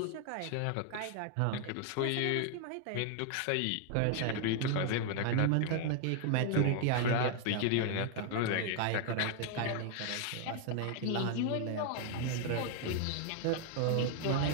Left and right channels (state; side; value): different; both; correlation 0.00